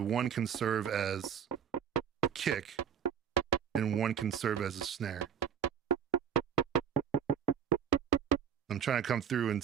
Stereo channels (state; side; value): quieter; left; 8.1 dB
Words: can serve as a kick and one can serve as a snare. I'm trying to come through and